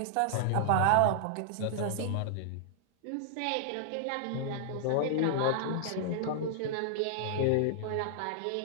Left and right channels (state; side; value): different; both; correlation -0.01